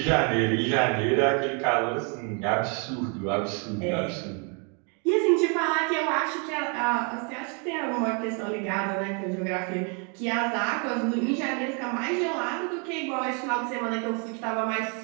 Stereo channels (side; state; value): left; quieter; 36.7 dB